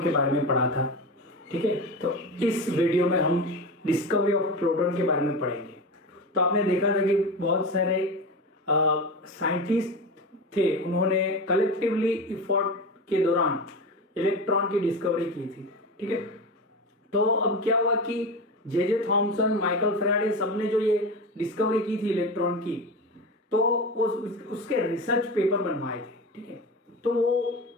के बारे में पढ़ा था, ठीक है। तो इस वीडियो में हम डिस्कवरी ऑफ प्रोटॉन के बारे में पढ़ेंगे। तो आपने देखा था कि बहुत सारे साइंटिस्ट थे, उन्होंने कलेक्टिवली इफोर्ट के दौरान इलेक्ट्रॉन की डिस्कवरी की थी, ठीक है। तो अब क्या हुआ कि जे थॉमसन, माइकल फैराडे, सबने जो ये डिस्कवरी की थी इलेक्ट्रॉन की, तो उसके रिसर्च पेपर बनवाए थे, ठीक है। तो वो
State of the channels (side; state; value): both; normal; correlation 0.24